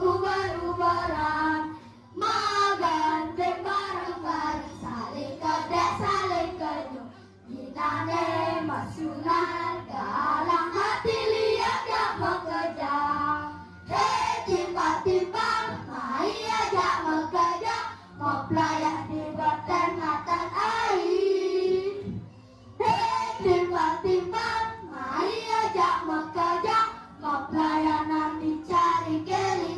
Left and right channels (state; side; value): identical; both; correlation 1.00